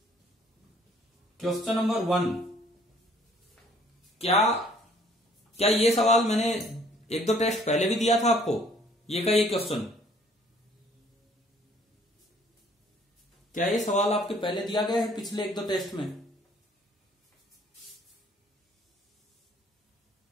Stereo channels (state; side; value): normal; both; correlation 0.59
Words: क्वेश्चन नंबर 1, क्या ये सवाल मैंने एक दो टेस्ट पहले भी दिया था आपको? ये का ये क्वेश्चन, क्या ये सवाल आपके पहले दिया गया है पिछले एक दो टेस्ट में?